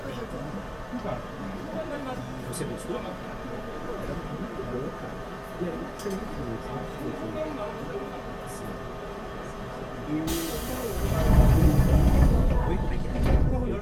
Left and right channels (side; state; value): both; identical; correlation 1.00